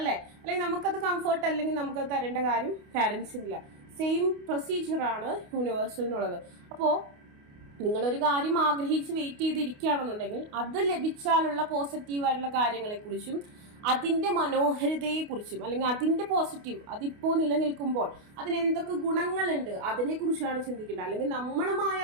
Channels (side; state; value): left; late; 28 ms